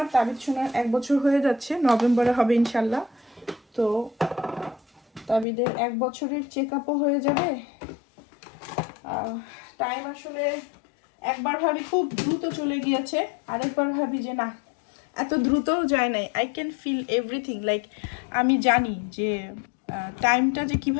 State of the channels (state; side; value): drops out; right; at 5.5 s